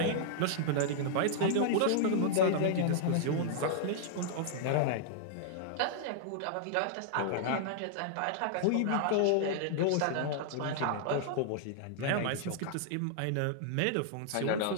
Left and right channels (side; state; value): both; different; correlation -0.01